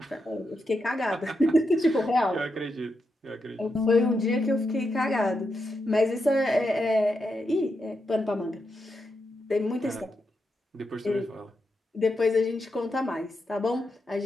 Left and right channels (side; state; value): both; normal; correlation 0.85